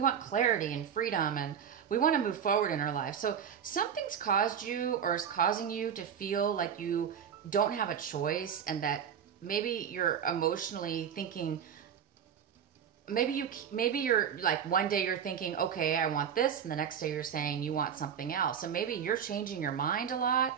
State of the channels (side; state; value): left; quieter; 8.1 dB